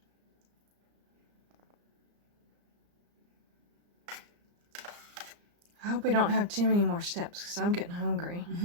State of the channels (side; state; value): left; late; 34 ms